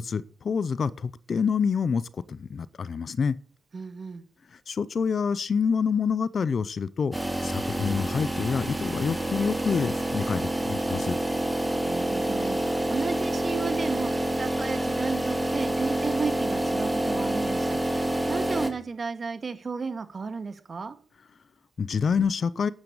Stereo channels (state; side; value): normal; both; correlation 0.89